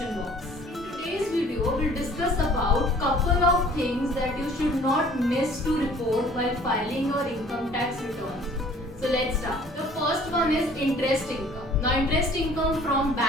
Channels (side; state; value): both; normal; correlation 0.53